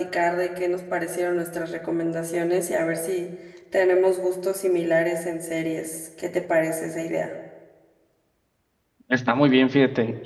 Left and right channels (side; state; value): both; identical; correlation 1.00